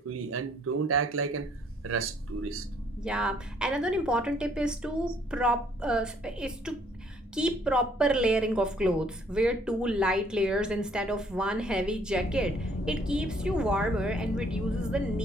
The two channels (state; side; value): normal; both; correlation 0.63